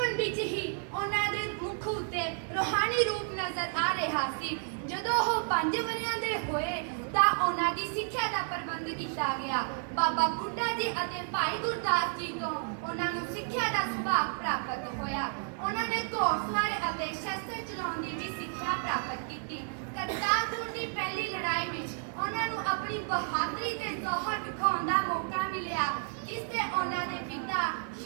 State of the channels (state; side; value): silent; left; 57 dB below the other